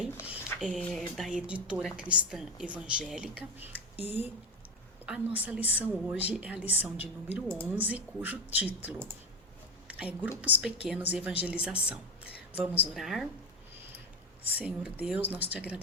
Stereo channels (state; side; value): normal; both; correlation 0.15